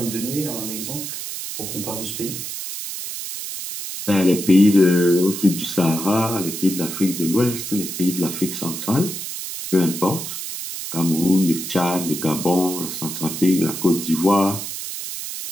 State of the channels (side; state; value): right; noise; hiss, 7 dB below the sound